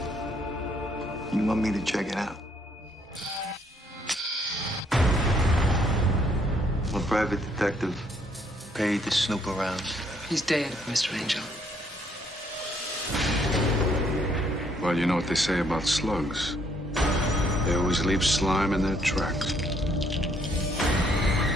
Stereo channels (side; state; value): both; normal; correlation 0.68